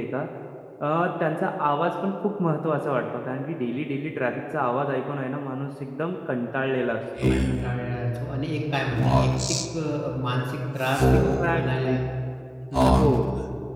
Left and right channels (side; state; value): both; identical; correlation 1.00